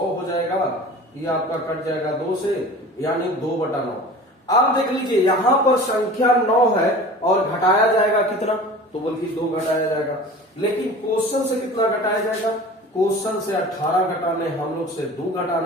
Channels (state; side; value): normal; both; correlation 0.40